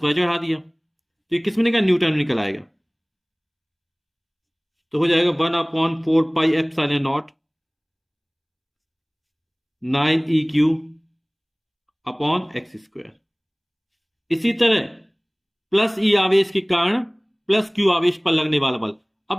चढ़ा दिया, तो ये किस में निकला, न्यूटन में निकल आएगा। तो हो जाएगा 1/4πε0 9eq अपॉन एक्स स्क्वायर। इसी तरह प्लस ई आवेश के कारण प्लस क्यू आवेश पर लगने वाला बल,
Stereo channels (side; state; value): both; identical; correlation 1.00